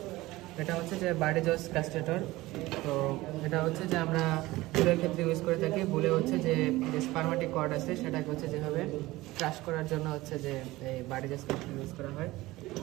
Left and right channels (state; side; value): quieter; left; 18.9 dB